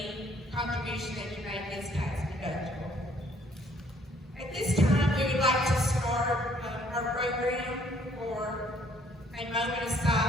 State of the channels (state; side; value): normal; both; correlation 0.63